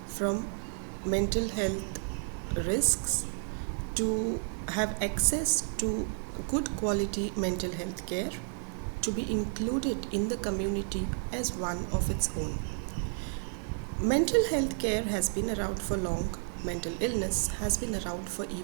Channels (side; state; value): left; silent; 57 dB below the other